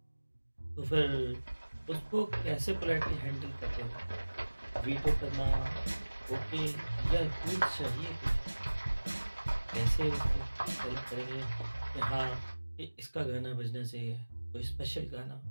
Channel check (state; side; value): inverted; both; correlation -1.00